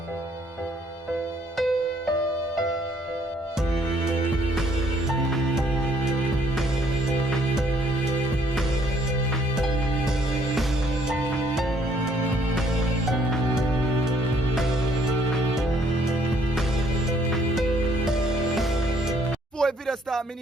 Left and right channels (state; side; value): normal; both; correlation 0.65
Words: Before the video start, me